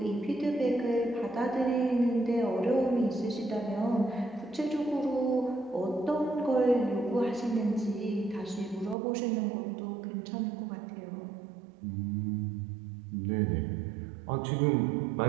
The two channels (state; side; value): drops out; left; at 9.0 s